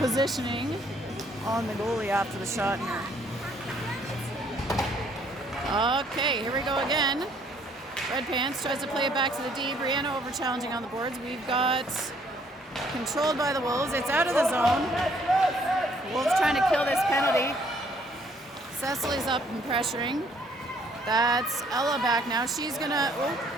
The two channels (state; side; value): normal; both; correlation 0.64